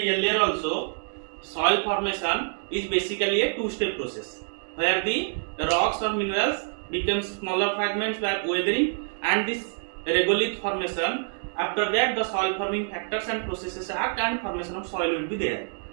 also, soil formation is basically a two-step process where the rocks or minerals become smaller fragments by weathering, and this regolith formation. After that, the soil forming factors and processes act and formation of soil will be there.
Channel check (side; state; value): left; silent; 60 dB below the other